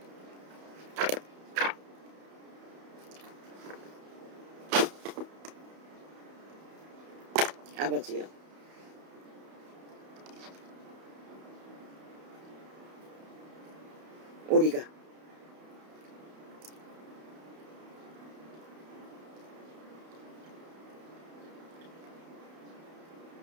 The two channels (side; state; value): left; late; 31 ms